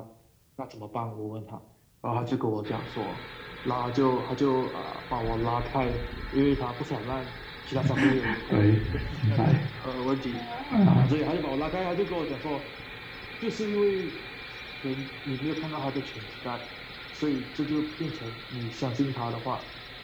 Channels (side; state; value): both; identical; correlation 1.00